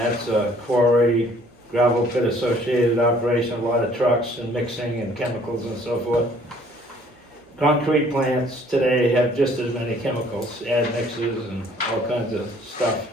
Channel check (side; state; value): both; normal; correlation 0.58